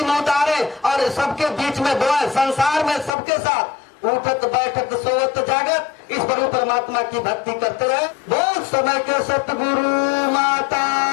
में उतारे और सबके बीच में बोए, संसार में सबके साथ उठत बैठत सोवत जागत इस प्रभु परमात्मा की भक्ति करते रहे। बहुत समय के सतगुरु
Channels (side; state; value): right; drops out; at 3.1 s